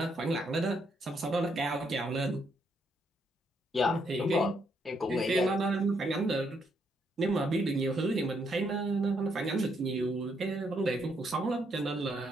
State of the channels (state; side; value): normal; both; correlation 0.75